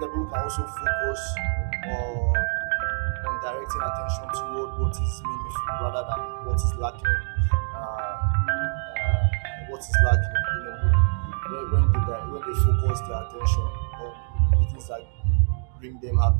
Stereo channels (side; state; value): left; silent; digital silence